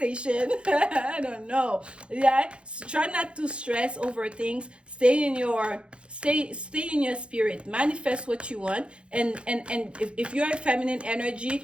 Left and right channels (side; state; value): left; late; 0.057 ms